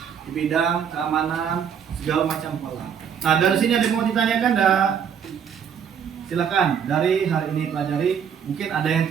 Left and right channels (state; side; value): quieter; left; 7.7 dB